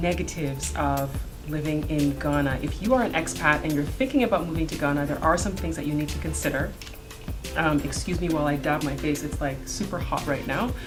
of living in Ghana. If you are an expat and you're thinking about moving to Ghana, there are some things that you need to consider. Excuse me while I dab my face, it's like super hot right now.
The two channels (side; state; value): both; identical; correlation 1.00